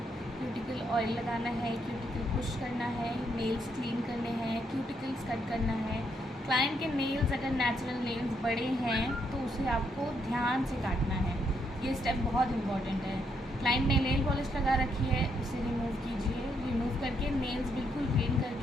क्यूटिकल ऑयल लगाना है, क्यूटिकल पुश करना है, नेल्स क्लीन करने हैं, क्यूटिकल्स कट करना है। क्लाइंट के नेल्स अगर नेचुरल नेल्स बड़े हैं तो उसे आपको ध्यान से काटना है। ये स्टेप बहुत इंपॉर्टेंट है। क्लाइंट ने नेल पॉलिश लगा रखी है, उसे रिमूव कीजिए। रिमूव करके नेल्स बिल्कुल क्लीन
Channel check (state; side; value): normal; both; correlation 0.76